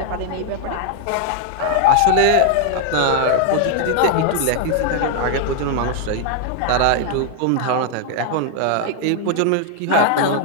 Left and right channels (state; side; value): different; both; correlation 0.00